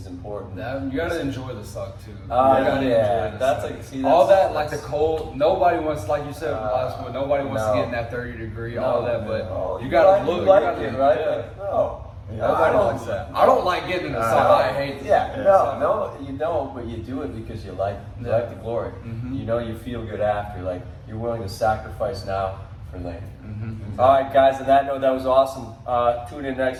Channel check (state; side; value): identical; both; correlation 1.00